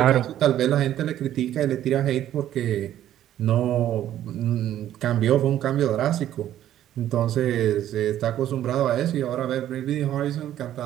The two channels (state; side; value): quieter; left; 12.0 dB